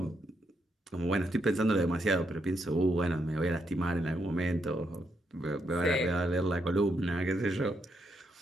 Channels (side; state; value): both; normal; correlation 0.79